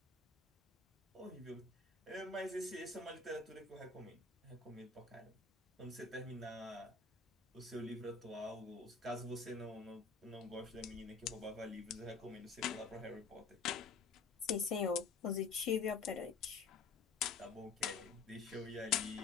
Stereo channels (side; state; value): right; quieter; 4.6 dB